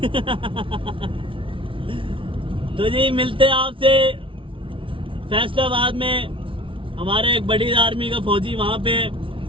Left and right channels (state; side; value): late; left; 0.25 ms